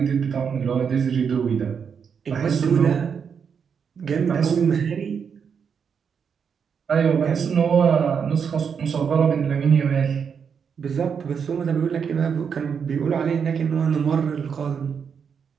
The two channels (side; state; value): left; quieter; 6.7 dB